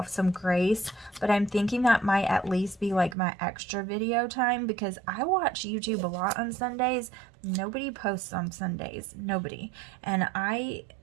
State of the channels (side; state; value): left; drops out; at 3.2 s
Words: some grace, but I'm thinking that might at least be like my extra video time because I watch YouTube a lot on Sundays. Nobody posts on Sundays. Nobody. And I